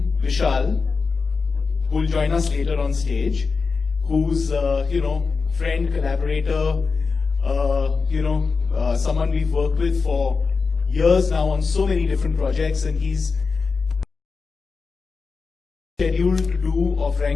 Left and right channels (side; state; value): right; quieter; 4.7 dB